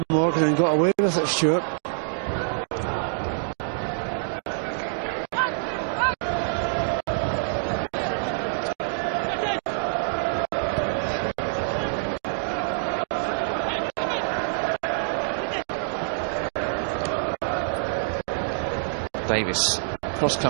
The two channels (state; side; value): silent; left; digital silence